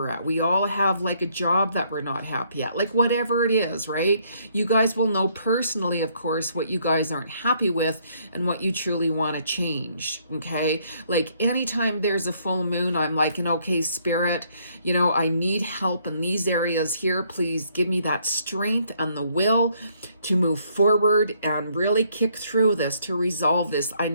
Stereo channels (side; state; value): both; inverted; correlation -0.68